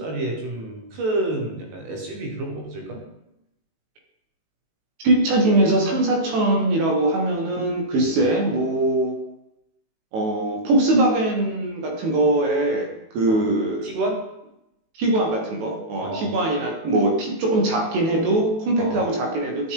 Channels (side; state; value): left; late; 18 ms